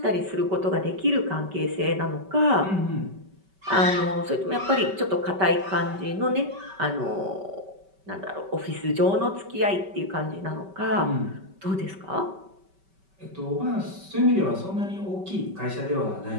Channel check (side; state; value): left; late; 5.2 ms